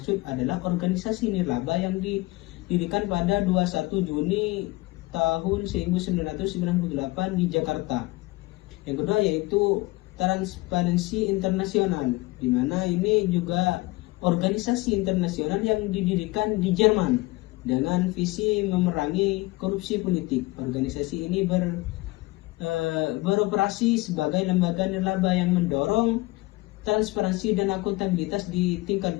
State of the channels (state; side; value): quieter; right; 21.5 dB